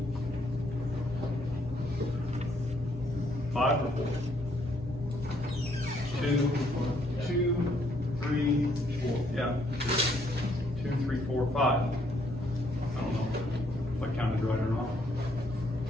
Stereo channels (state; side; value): normal; both; correlation 0.70